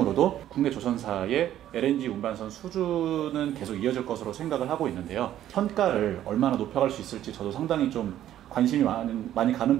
국내 조선사의 LNG 운반선 수주는 계속 이어질 것으로 생각을 하고 있는데요. 선가를 얼마나 높여갈 수 있을지 저도 상당히 좀 관심이 많이 가는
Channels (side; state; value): left; quieter; 12.0 dB